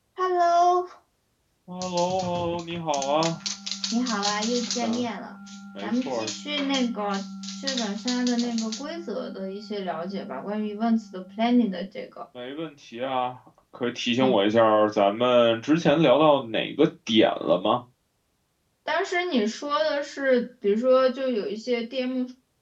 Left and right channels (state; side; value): identical; both; correlation 1.00